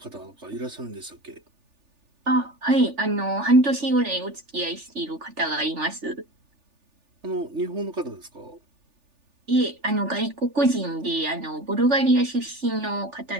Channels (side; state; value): left; late; 3.4 ms